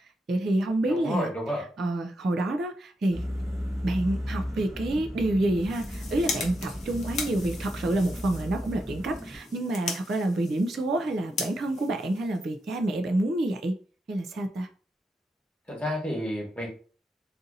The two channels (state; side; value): normal; both; correlation 0.84